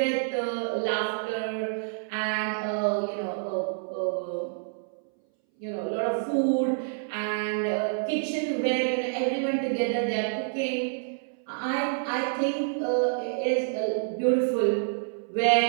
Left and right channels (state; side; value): silent; left; 59 dB below the other